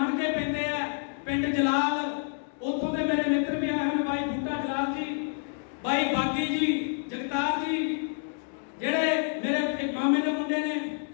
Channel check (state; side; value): silent; right; 59 dB below the other